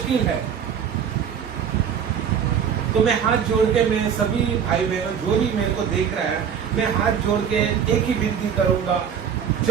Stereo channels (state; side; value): quieter; left; 7.8 dB